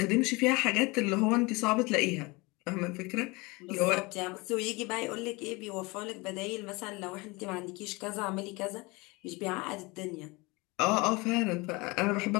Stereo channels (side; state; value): right; quieter; 25.1 dB